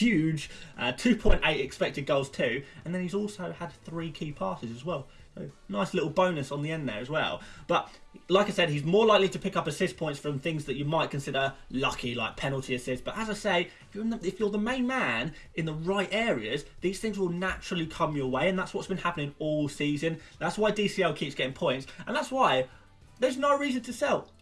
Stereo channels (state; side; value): identical; both; correlation 1.00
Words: 2.8 expected goals too, and then he's also had 3 key passes as well, so nice little bonus on the end there as well. But like I said, he's more likely to pick up assist points from things that you might consider lucky, like penalty assists. But as I say, if you're the main man in the right areas, these things will naturally come your way, and that's what's been happening all season. That's why DCL keeps getting points, and that's why there's no reason to sell.